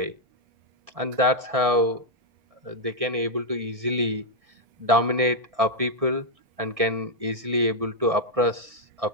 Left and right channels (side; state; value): left; late; 1.6 ms